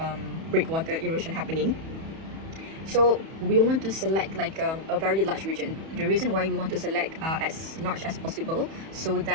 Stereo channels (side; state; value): left; late; 31 ms